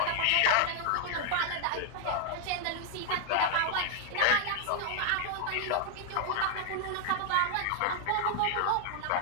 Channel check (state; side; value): different; both; correlation 0.00